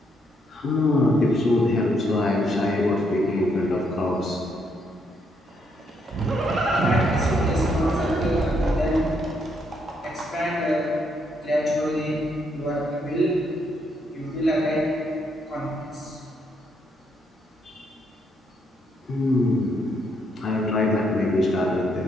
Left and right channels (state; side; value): normal; both; correlation 0.74